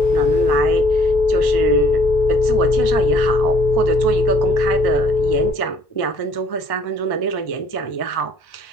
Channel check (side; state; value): right; late; 1.1 ms